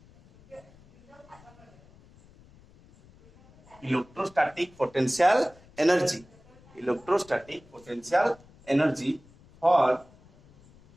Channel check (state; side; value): noise; left; rumble, 26 dB below the sound